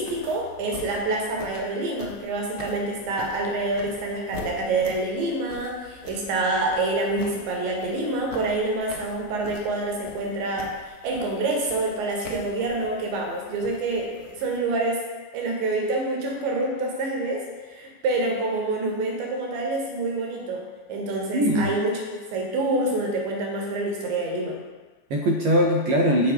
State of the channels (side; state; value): left; late; 14 ms